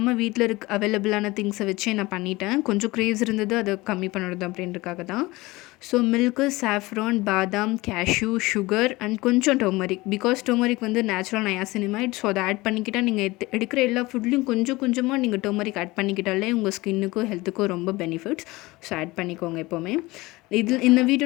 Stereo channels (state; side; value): quieter; right; 21.0 dB